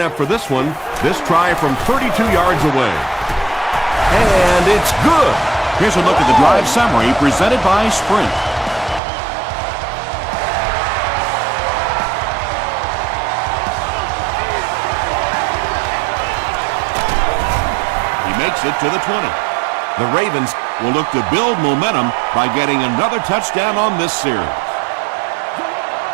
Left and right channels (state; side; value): drops out; left; at 9.0 s